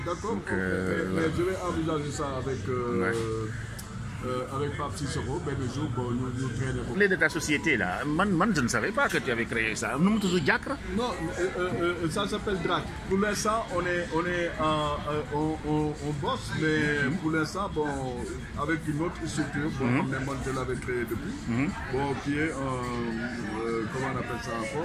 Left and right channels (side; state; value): both; identical; correlation 1.00